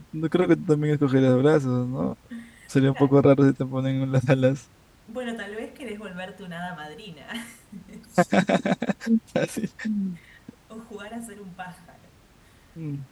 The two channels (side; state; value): both; identical; correlation 1.00